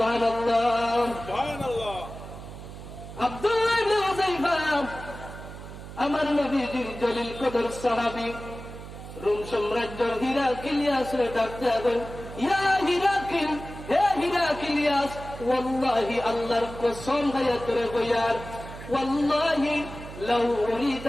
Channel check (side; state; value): right; noise; hum, 13 dB below the sound